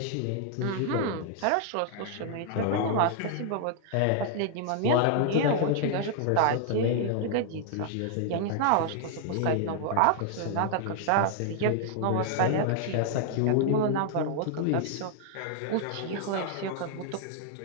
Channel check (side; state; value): both; different; correlation 0.00